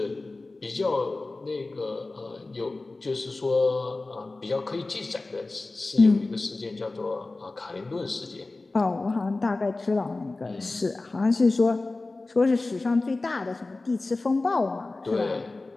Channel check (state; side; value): quieter; right; 3.3 dB